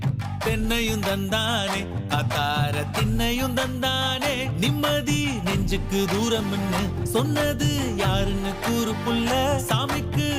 தென்னையும் தந்தானே அத்தார திண்ணையும் தந்தானே நிம்மதி நெஞ்சுக்கு தூரம்னு சொன்னது யாருன்னு கூறு புள்ள சாமிக்கு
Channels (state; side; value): identical; both; correlation 1.00